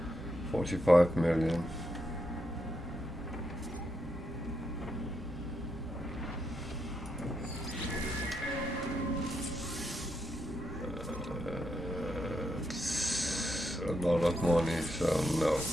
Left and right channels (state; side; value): normal; both; correlation 0.82